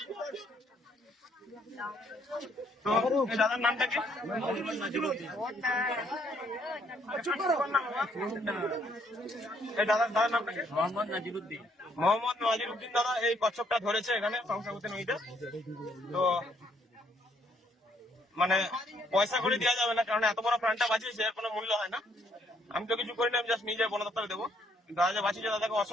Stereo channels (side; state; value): both; normal; correlation 0.69